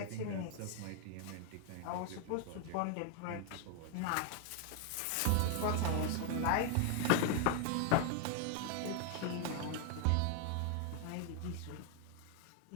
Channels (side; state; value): both; different; correlation 0.00